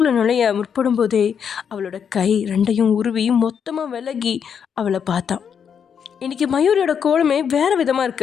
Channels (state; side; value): quieter; right; 7.4 dB